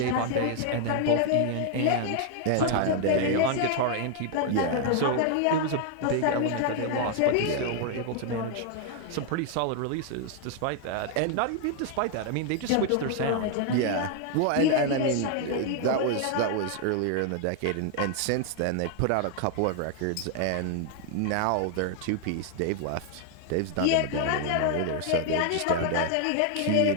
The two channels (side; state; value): both; different; correlation 0.00